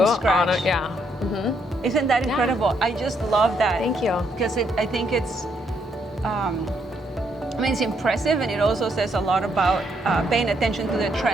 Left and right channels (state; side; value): normal; both; correlation 0.74